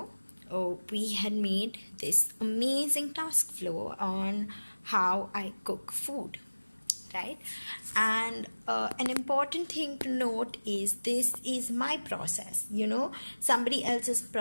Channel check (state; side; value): inverted; both; correlation -1.00